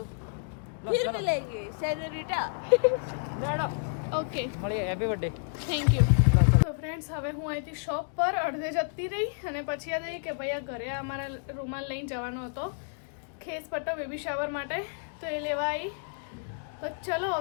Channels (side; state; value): right; silent; digital silence